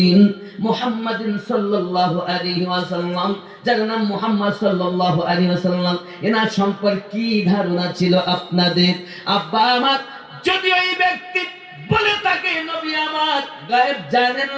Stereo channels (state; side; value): identical; both; correlation 1.00